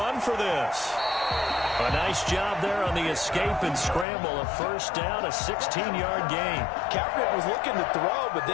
for this. A nice job there on the escape and scramble. A first down, a 16-yard gain. Kaepernick was looking to throw, but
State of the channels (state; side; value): drops out; right; at 4.0 s